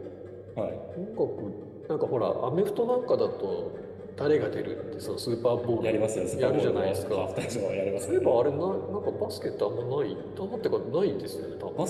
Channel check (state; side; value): identical; both; correlation 1.00